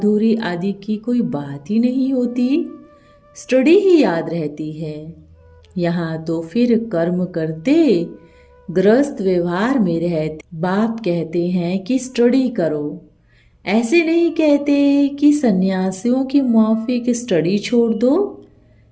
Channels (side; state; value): both; identical; correlation 1.00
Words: आदि की कोई बात ही नहीं होती, स्टडी ही याद रहती है। यहाँ तो फिर कर्म करते गृहस्थ व्यवहार में रहते बाप कहते हैं कि स्टडी करो। ऐसे नहीं कहते कि सन्यासियों की माफिक स्टडी छोड़ दो।